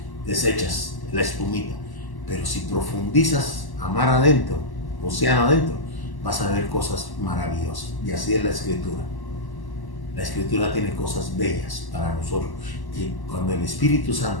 deshechas, la espumita. Pero si profundizas a mar adentro, océano adentro, vas a ver cosas maravillosas. Y así es la escritura. La escritura tiene cosas bellas para nosotros. Que cuando el Espíritu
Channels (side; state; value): right; late; 1.1 ms